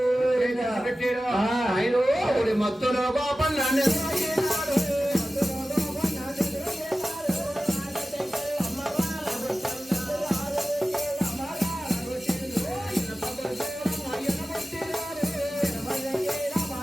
పెట్టాడు ఆయన మత్తులో కోపం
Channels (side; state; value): both; normal; correlation 0.95